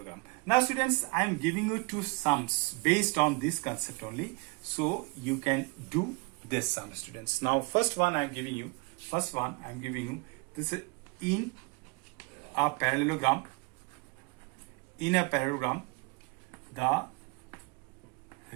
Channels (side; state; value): left; quieter; 28.9 dB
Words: Now students, I am giving you two sums based on this concept only, so you can do this sum, students. Now first one I am giving you this is in a parallelogram. In a parallelogram, the